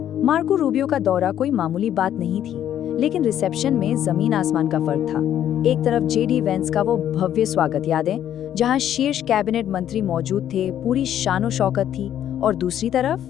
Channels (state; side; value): quieter; right; 10.7 dB